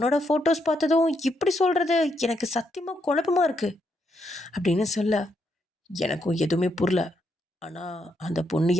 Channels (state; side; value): normal; both; correlation 0.78